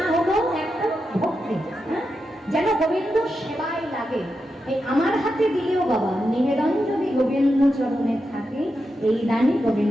হলো একটা ভক্তি, যেন গোবিন্দ সেবায় লাগে। এই আমার হাতে দিলেও বাবা নিবেদন যদি গোবিন্দ চরণে থাকে, এই দানই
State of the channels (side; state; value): both; normal; correlation 0.88